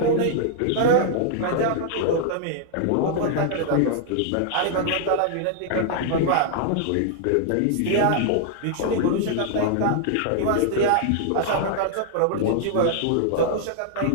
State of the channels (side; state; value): both; different; correlation -0.01